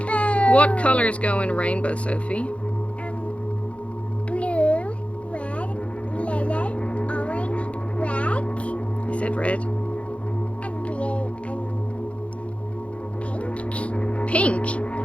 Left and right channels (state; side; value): late; right; 0.062 ms